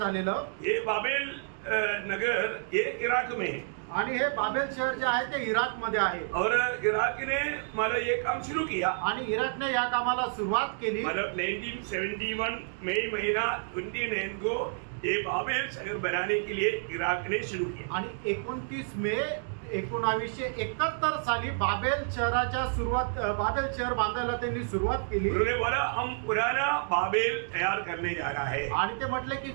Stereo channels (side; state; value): left; silent; digital silence